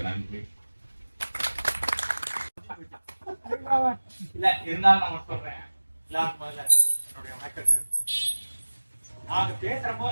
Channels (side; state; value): both; inverted; correlation -1.00